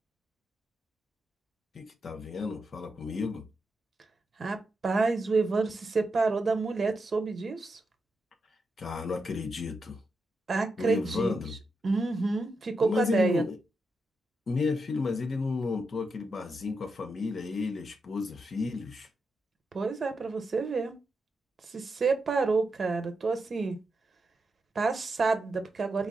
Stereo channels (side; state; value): both; normal; correlation 0.85